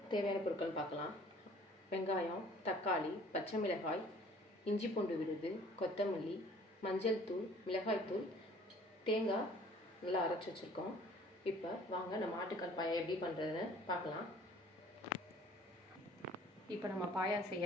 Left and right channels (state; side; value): normal; both; correlation 0.53